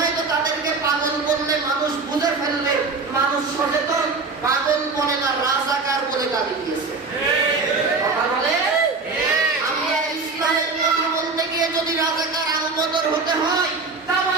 তো তাদেরকে পাগল বললে মানুষ বুঝে ফেলবে, মানুষ সচেতন। পাগল বলে না, রাজাকার বলে গালি দিয়েছে। কথা বলে আমরা ইসলামের কথা বলতে গিয়ে যদি রাজাকার আলবদর হতে হয়, তাও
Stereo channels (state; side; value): quieter; left; 4.1 dB